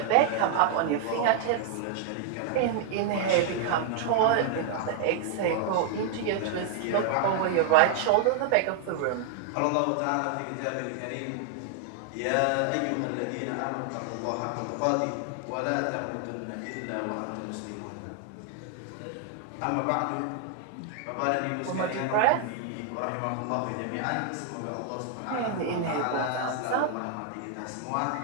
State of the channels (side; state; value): both; different; correlation 0.00